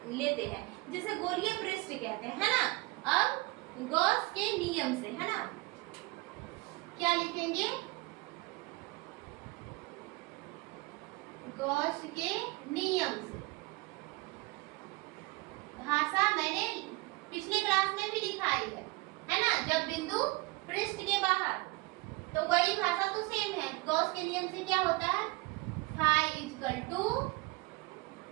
हैं जिसे गोलीय पृष्ठ कहते हैं, है ना। अब गॉस के नियम से, है ना, क्या लिखेंगे, गॉस के नियम से। भाषा मैंने पिछले क्लास में भी लिखाई है ना, जब बिंदु पृष्ठ के बाहर, तो वही भाषा तो सेम है। गॉस के नियम से क्या होता है, फाई इक्वल टू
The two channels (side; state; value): left; quieter; 23.1 dB